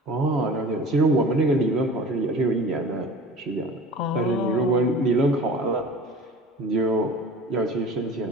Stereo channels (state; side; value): normal; both; correlation 0.41